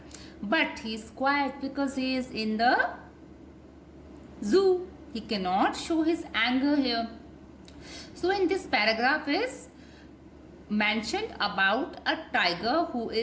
But he is quiet because he is in the zoo. He cannot show his anger here. So in this paragraph is mentioned about a tiger who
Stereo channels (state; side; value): identical; both; correlation 1.00